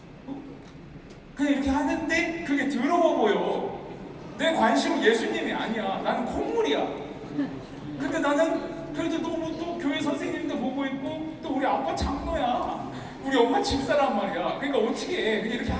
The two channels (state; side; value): identical; both; correlation 1.00